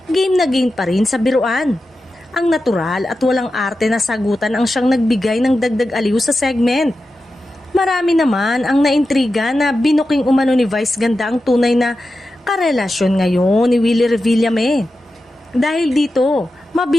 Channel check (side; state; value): both; normal; correlation 0.91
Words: game na game pa rin sa biruan. Ang natural at walang arte na sagutan ang siyang nagbigay ng dagdag aliw sa segment. Marami naman ang naintriga na binuking umano ni Vice Ganda ang tunay na karelasyon ngayon ni Willie Revillame. Dahil dito,